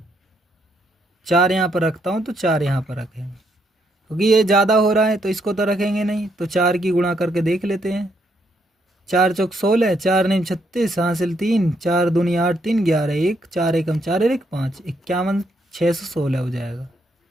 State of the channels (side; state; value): both; normal; correlation 0.75